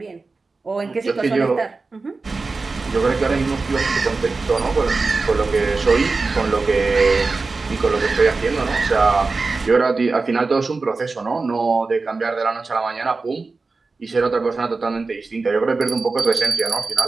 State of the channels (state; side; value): quieter; left; 3.9 dB